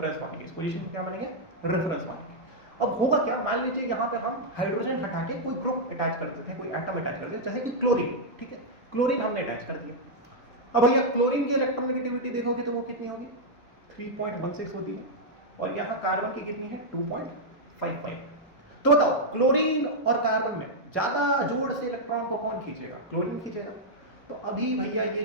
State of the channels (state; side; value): normal; both; correlation -0.05